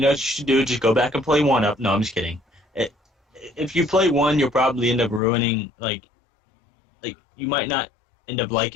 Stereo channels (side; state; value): right; drops out; at 5.2 s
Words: should do, just go back and play 1 up. No, I'm just kidding. If you play 1, you'll probably end up ruining, like you might not end up